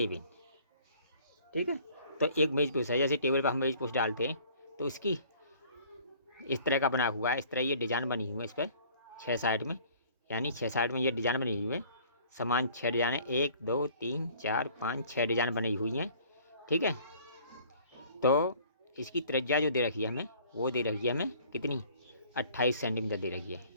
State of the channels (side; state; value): both; inverted; correlation -0.54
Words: ठीक है, तो एक मेज पोस्ट है, जैसे टेबल पर हम मेज पोस्ट डालते हैं तो उसकी इस तरह का बना हुआ है, इस तरह ये डिजाइन बनी हुई है। इस पर 6 साइड में, यानी 6 साइड में ये डिजाइन बनी हुई है। समान 6 डिजाइन है, 1 2 3 4 5 6 डिजाइन बनी हुई हैं। ठीक है, तो इसकी त्रिज्या जो दे रखी है हमें, वो दे रखी है हमें कितनी, 28 सेंटीमीटर दे रखी है।